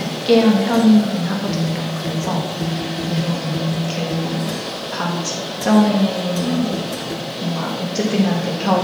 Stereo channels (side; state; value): left; noise; hiss, 27 dB below the sound